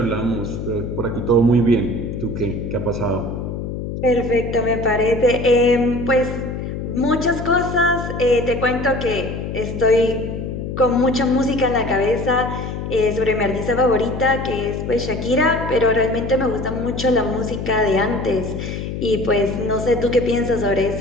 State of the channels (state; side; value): noise; left; hum, 5 dB below the sound